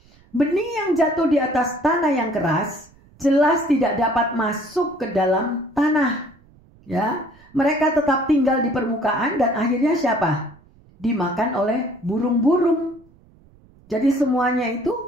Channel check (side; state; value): right; noise; rumble, 28 dB below the sound